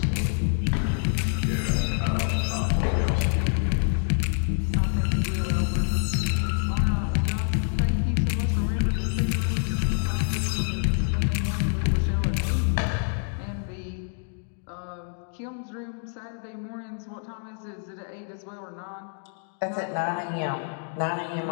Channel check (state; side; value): silent; right; digital silence